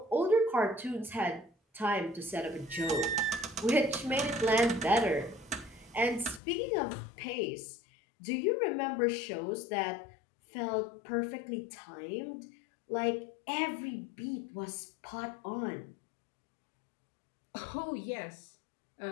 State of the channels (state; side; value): drops out; right; at 6.4 s